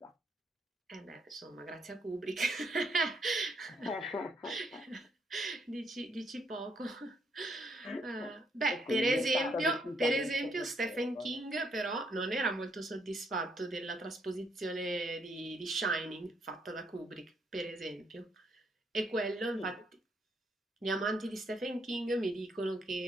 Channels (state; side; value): normal; both; correlation 0.72